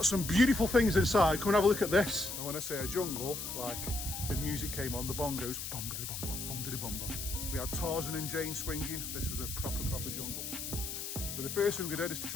some beautiful things inside. Come and have a look at this. And when I say a jungle, like the music came on, the bongos, bum-da-da-bum-bum, bum-da-da-bum-bum. We had Tarzan and Jane swinging. This was a proper jungle. So the first thing we did is to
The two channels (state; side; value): noise; left; hiss, 6 dB below the sound